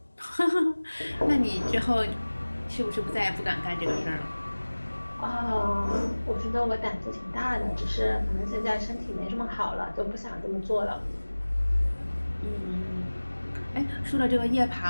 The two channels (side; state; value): both; inverted; correlation -1.00